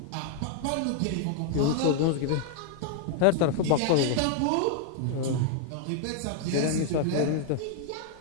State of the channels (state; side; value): different; both; correlation 0.00